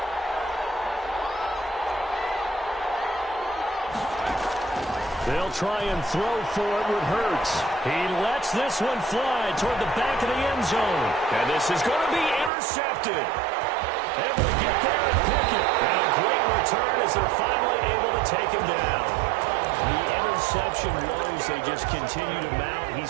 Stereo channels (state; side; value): drops out; left; at 12.5 s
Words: They'll try and throw for it with Hurts. He lets this one fly toward the back of the end zone. And this is going to be intercepted. Able to get there and pick it. And a great return as they're finally able to take him down. The interception woes, they just continue to mount.